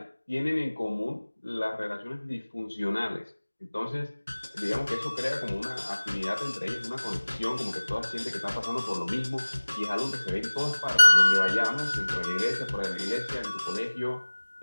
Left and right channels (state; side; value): inverted; both; correlation -1.00